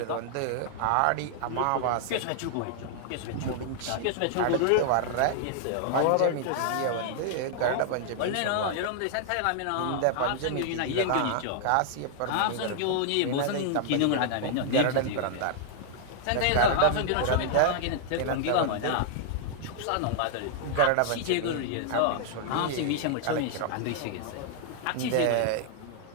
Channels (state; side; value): different; both; correlation -0.01